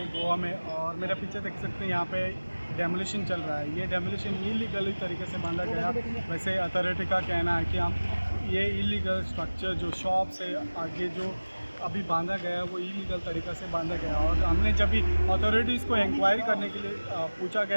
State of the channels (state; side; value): inverted; both; correlation -1.00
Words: गोवा में, और मेरा पीछे देख सकते हैं यहाँ पे डेमोलिशन चल रहा है। ये डेमोलिशन इलीगल तरीके से बांधा गया। वैसे अथॉरिटी का कहना है कि हम ये इलीगल स्ट्रक्चर जो शॉप से आगे जो अभी बांधा गया है वो इलीगल तरीक़े से बांधा गया। और हमने जब भी अथॉरिटीज़ को इंक्वायरी करने के लिए पूछा